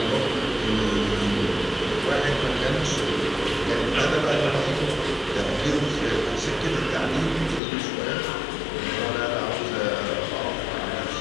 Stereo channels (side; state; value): right; drops out; at 7.6 s